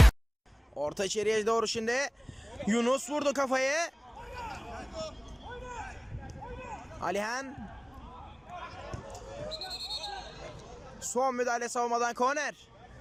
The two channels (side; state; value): both; identical; correlation 1.00